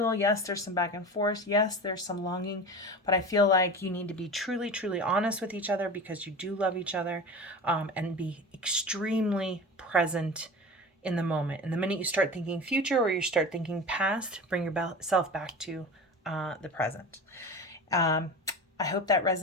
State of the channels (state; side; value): normal; both; correlation 0.32